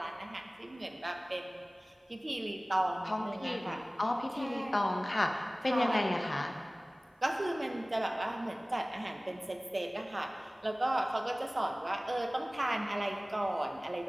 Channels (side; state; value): both; normal; correlation 0.98